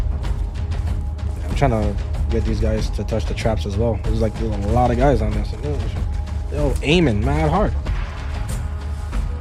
I'm trying to get these guys to touch the traps as well. There's a lot of guys on this. They're aiming mad hard.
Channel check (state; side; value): identical; both; correlation 1.00